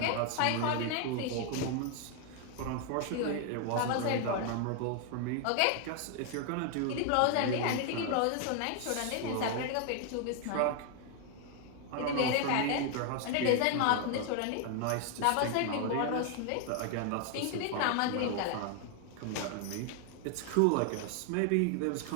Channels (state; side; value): different; both; correlation 0.00